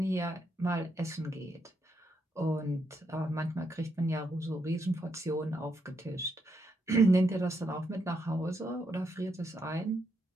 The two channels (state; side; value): normal; both; correlation 0.80